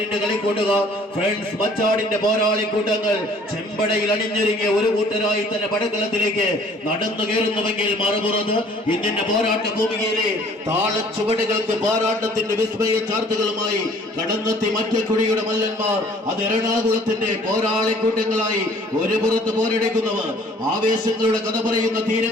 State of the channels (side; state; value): both; normal; correlation 0.55